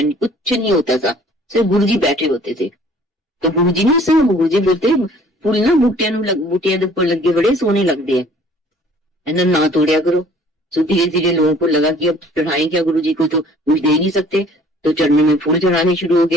कुछ नहीं होता था, सिर्फ गुरु जी बैठे होते थे। तो गुरु जी ने सिर्फ गुरु जी बोलते फुल ना बूटियां ऊपर लगे बड़े सोने लगते हैं ना तोड़िया करो। तो धीरे धीरे लोगों को लगा कि अब चढ़ाएं क्या, गुरु जी को तो कुछ दे नहीं सकते, तो चरणों में फूल चढ़ाने शुरू हो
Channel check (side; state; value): both; normal; correlation 0.55